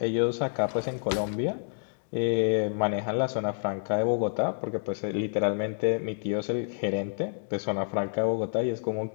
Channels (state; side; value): silent; right; digital silence